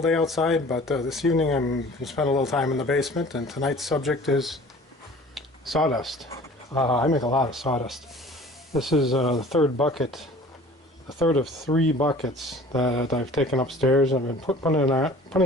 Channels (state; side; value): normal; both; correlation 0.47